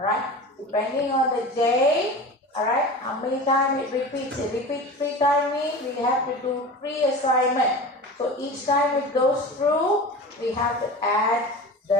depending on the j, alright, how many times it repeats. It repeats 3 times means we have to do 3 assignment. So each time it goes through, we have to add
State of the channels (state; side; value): normal; both; correlation 0.33